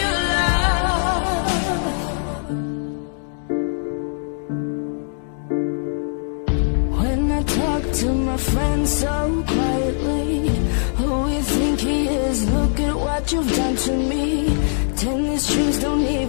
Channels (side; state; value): right; silent; digital silence